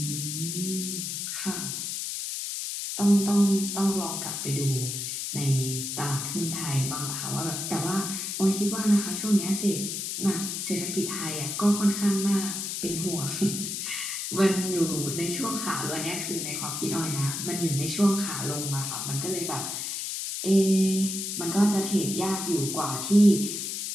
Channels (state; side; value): noise; left; hiss, 4 dB below the sound